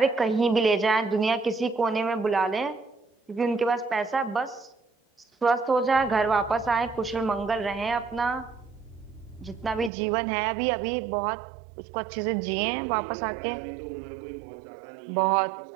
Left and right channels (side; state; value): left; drops out; at 9.9 s